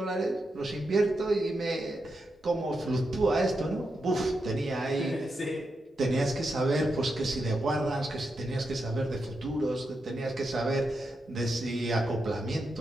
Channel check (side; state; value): both; normal; correlation 0.86